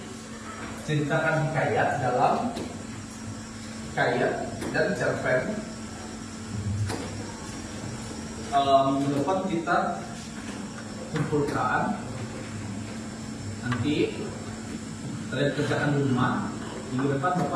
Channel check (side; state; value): both; identical; correlation 1.00